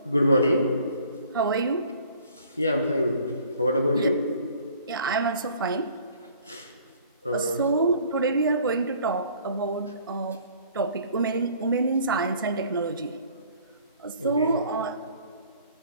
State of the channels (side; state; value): both; inverted; correlation -0.55